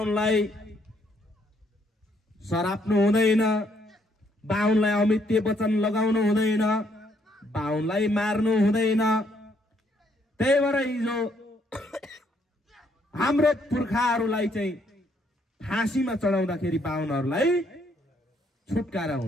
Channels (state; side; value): normal; both; correlation 0.70